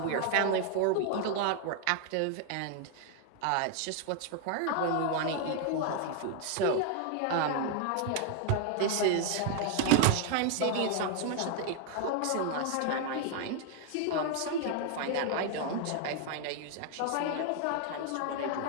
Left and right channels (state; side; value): different; both; correlation 0.00